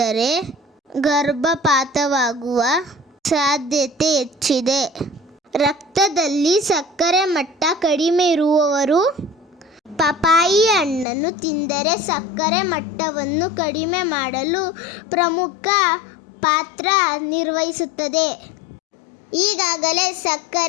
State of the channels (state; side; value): drops out; right; at 11.1 s